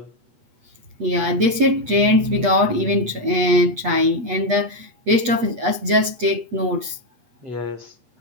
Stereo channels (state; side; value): late; left; 8.3 ms